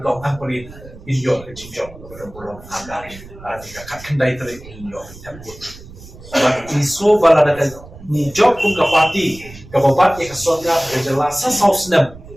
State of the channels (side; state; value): right; noise; rumble, 18 dB below the sound